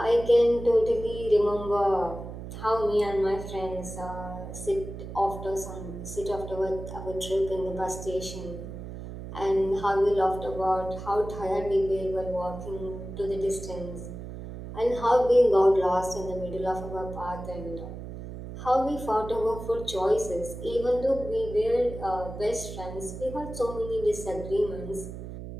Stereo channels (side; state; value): right; noise; hum, 10 dB below the sound